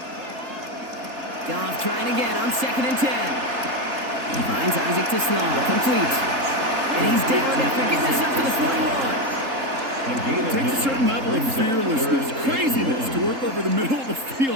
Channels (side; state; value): left; late; 3.7 ms